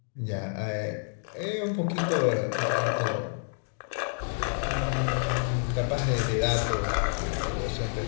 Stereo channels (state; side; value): silent; right; 59 dB below the other